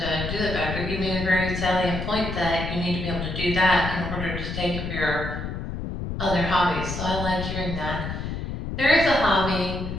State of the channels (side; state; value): left; noise; rumble, 5 dB below the sound